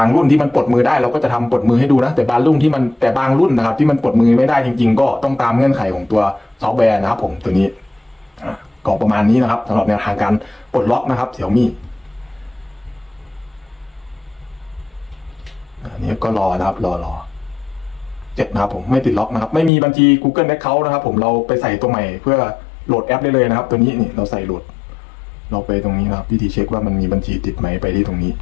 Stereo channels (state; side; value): drops out; right; at 19.7 s